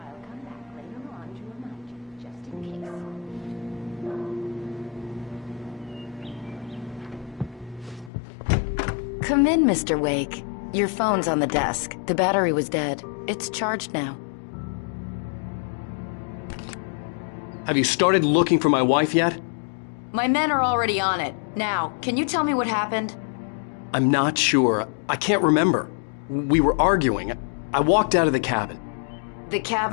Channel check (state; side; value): drops out; right; at 8.1 s